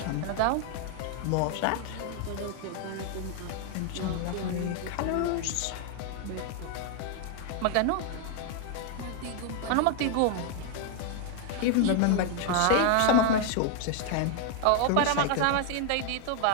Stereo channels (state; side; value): different; both; correlation 0.00